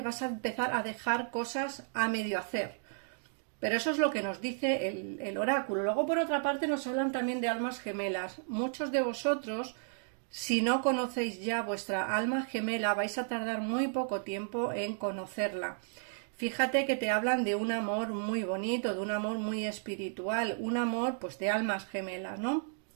a empezar a dejar cosas a medio hacer. Pero eso es lo que nos dice el oráculo. Luego, por otra parte, nos hablan también de almas gemelas. Muchos de vosotros, si no conocéis ya vuestra alma gemela, vais a tardar muy poco tiempo en conocerla. Fíjate que te hablan de un amor muy bonito, de un amor muy espiritual, un amor pues de almas gemelas, ¿no?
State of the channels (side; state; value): left; silent; digital silence